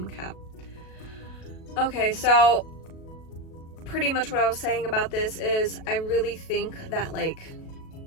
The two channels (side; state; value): right; late; 37 ms